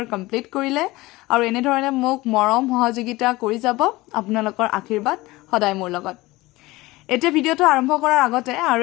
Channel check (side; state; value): right; quieter; 20.0 dB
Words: কমপ্লিট কৰিলে আৰু এনে ধৰণে মোক মৰম সহযোগিতা কৰি যাব আপোনালোকৰ আশীৰ্বাদ সদায় মোৰ লগত এটা ভিডিঅ'টো আৰম্ভ কৰাৰ আগতে আৰু